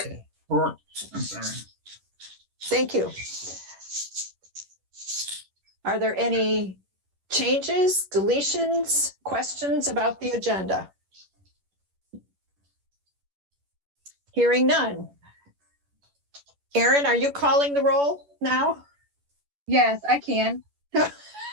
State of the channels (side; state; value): left; late; 11 ms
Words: Or, I'm sorry. Thank you. Are there any changes, deletions, questions about the agenda? Hearing none. Erin, are you calling the roll now? Yes, I can.